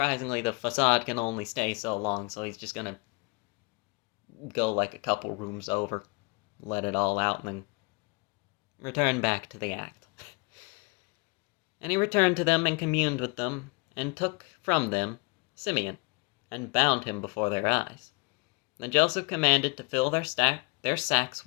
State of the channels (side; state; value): right; quieter; 30.9 dB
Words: the facade can only stay so long, so he's just gonna go like a couple rooms over, let it all out, and then return back to the act. And he returned to them and communed with them, and took from them Simeon, and bound him before their eyes. Then Joseph commanded to fill their sacks